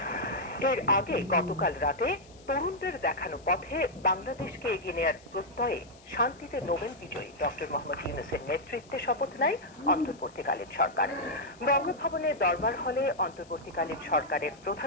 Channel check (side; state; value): left; noise; hiss, 26 dB below the sound